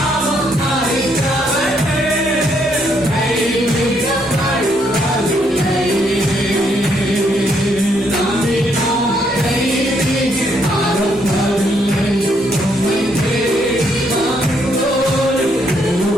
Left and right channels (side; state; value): both; normal; correlation 0.73